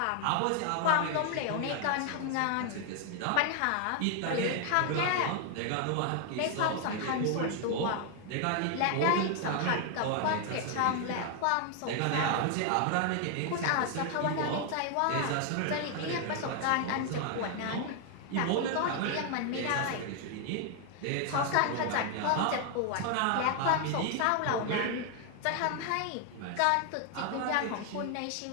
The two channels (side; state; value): both; different; correlation 0.00